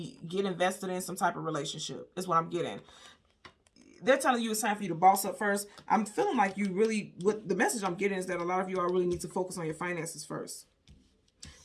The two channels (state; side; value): identical; both; correlation 1.00